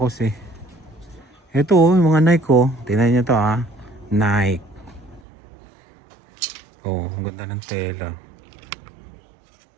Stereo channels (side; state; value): left; drops out; at 5.2 s